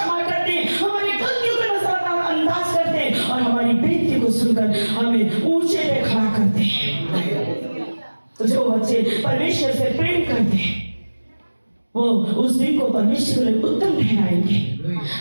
करते हैं, हमारी गलतियों को नजरअंदाज करते हैं, और हमारी बेनती को सुनकर हमें ऊंचे पे खड़ा करते हैं। तो जो बच्चे परमेश्वर से प्रेम करते हैं, वो उस दिन को परमेश्वर के लिए उत्तम ठहराएंगे,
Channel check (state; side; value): inverted; both; correlation -1.00